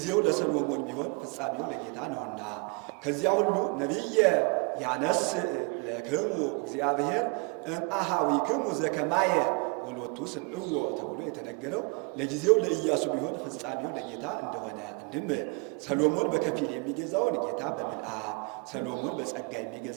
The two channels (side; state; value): left; quieter; 32.1 dB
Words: ለሰሎሞን ቢሆን ፍጻሜው ለጌታ ነውና። ከዚያ ሁሉ ነቢየ ያነስ ለክሙ እግዚአብሔር እምአሃዊክሙ ዘከማየ ወሎቱ ስምዕዎ ተብሎ የተነገረው ለጊዜው ለኢያሱ ቢሆን ፍጻሜው ለጌታ እንደሆነ፣ አንድም ሰሎሞን በከፊል የሚገዛውን ጌታ በምልአት፣ ሰሎሞን በጸጋ